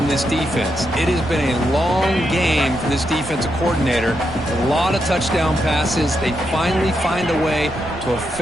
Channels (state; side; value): noise; right; rumble, 15 dB below the sound